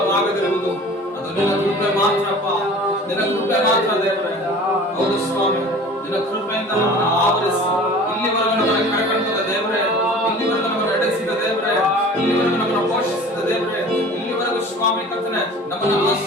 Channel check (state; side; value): normal; both; correlation 0.43